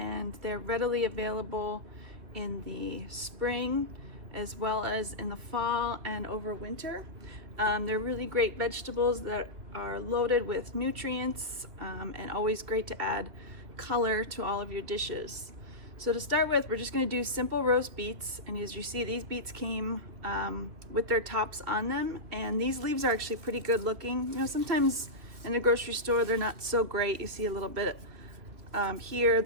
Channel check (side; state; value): left; late; 2.5 ms